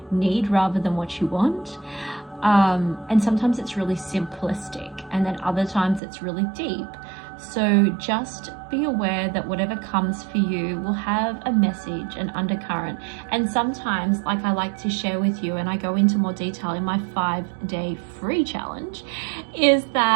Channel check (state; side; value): drops out; left; at 6.0 s